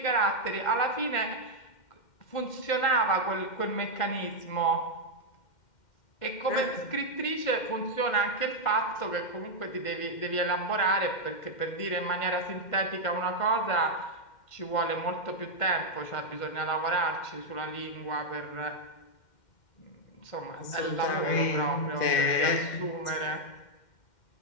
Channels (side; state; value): right; late; 2.1 ms